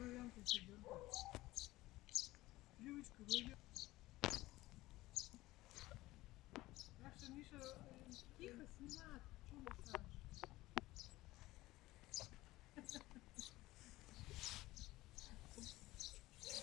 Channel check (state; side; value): quieter; right; 18.0 dB